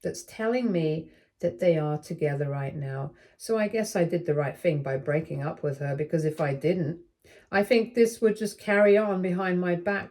that's telling me that they are together right now. So I guess I did the right thing by breaking up with her, because if I didn't, I think this would just carry on behind my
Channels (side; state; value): both; identical; correlation 1.00